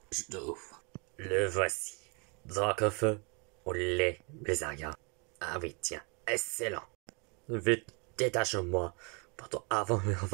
je t'ouvre. Le voici. Dracofeu au lait, Blizzard. Ah oui, tiens, excellent. Vite, détache-moi, pourtant avant on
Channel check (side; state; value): left; quieter; 33.6 dB